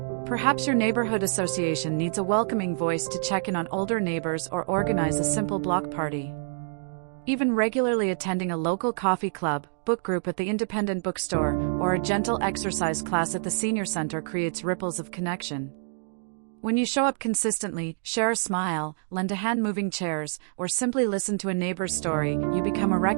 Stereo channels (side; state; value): left; silent; digital silence